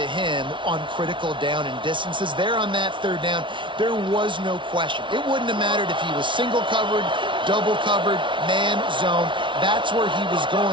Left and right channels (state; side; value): late; left; 0.24 ms